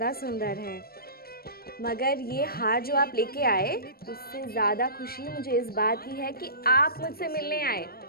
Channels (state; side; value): late; right; 0.44 ms